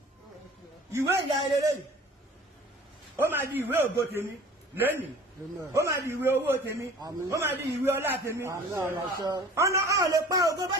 ìwé ìyá ẹlẹ́lẹ́ ó máa di ìwé ògo tèmi lẹ́nìí ó máa di ìwé owó tèmi ó máa di ìwé ọlá tèmi ọ̀nà ọ̀ lè pa ògo bá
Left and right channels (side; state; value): both; normal; correlation 0.45